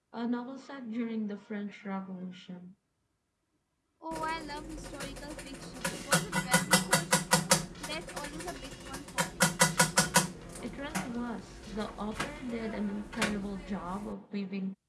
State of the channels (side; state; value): both; identical; correlation 1.00